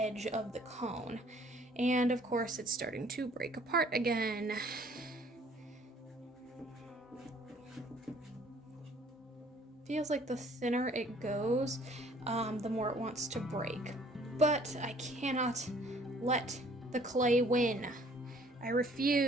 of the cone. And of course, it's starting to break apart again. Feels like the thinner it goes, the more it wants to break. But I cannot let the clay win. I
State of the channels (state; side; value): normal; both; correlation 0.58